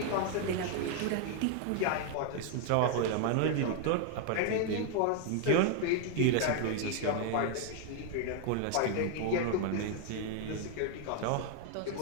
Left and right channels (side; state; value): both; different; correlation 0.00